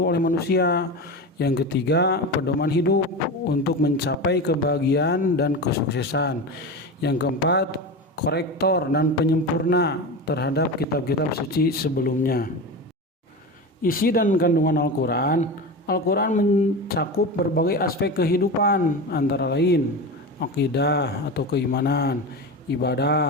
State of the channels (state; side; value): normal; both; correlation 0.24